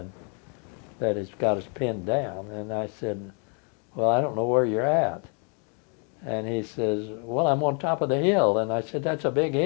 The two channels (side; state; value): right; quieter; 38.4 dB